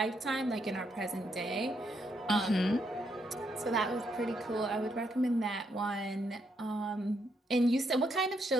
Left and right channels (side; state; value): both; normal; correlation 0.77